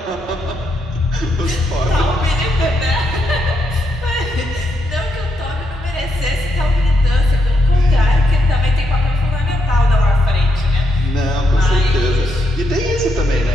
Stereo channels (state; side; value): normal; both; correlation 0.80